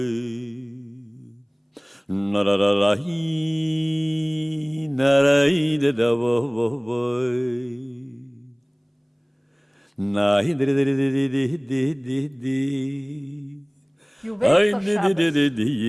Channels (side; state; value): both; identical; correlation 1.00